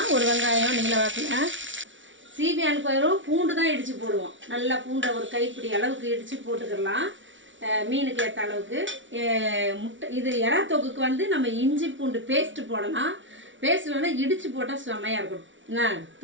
ஒரு வெங்காயம் நீல வாக்கில். சீபியானுக்கு வரும் பூண்டு தான் இடித்து போடுவோம். நல்லா பூண்டை ஒரு கைப்பிடி அளவுக்கு இடித்து போட்டுக்கிடலாம். மீனுக்கு ஏற்ற அளவுக்கு. முட்டை இது எறா தொக்குக்கு வந்து நம்ம இஞ்சி பூண்டு பேஸ்ட்டு போடலாம். பேஸ்ட்டில் வந்து இடித்து போட்டால் செம்மையாக இருக்கும். என்ன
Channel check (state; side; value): late; left; 0.56 ms